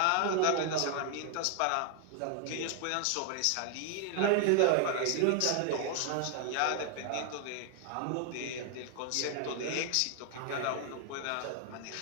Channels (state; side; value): different; both; correlation 0.00